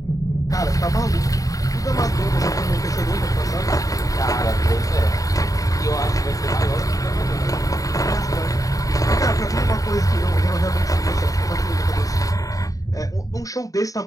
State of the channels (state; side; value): late; right; 0.17 ms